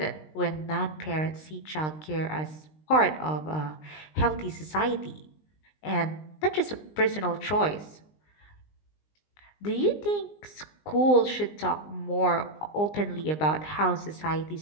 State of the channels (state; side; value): late; right; 19 ms